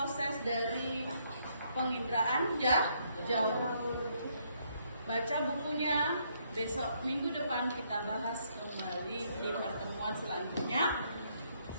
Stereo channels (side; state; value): both; inverted; correlation -0.71